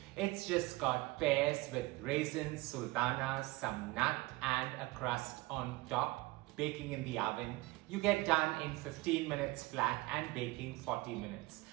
It's just got pears with raisins, sultanas, some nut and a crust on top, baking in the oven. You get done in 15 minutes flat and baking 40 minutes.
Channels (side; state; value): left; quieter; 20.9 dB